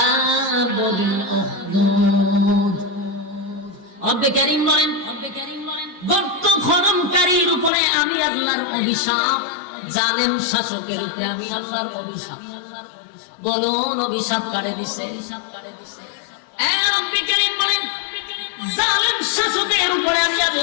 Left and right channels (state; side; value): drops out; right; at 7.7 s